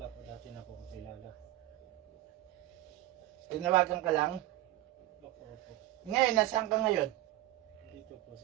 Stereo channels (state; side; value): quieter; left; 16.1 dB